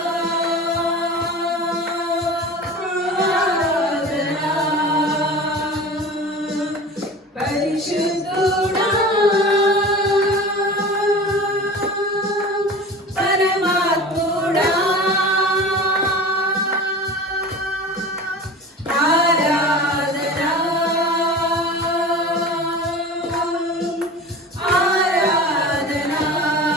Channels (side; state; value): both; normal; correlation 0.35